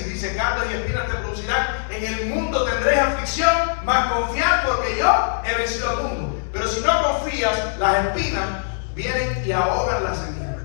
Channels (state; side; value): silent; right; digital silence